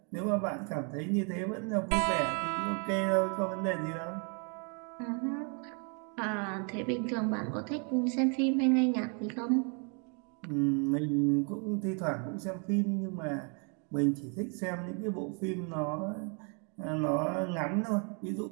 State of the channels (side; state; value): left; quieter; 37.9 dB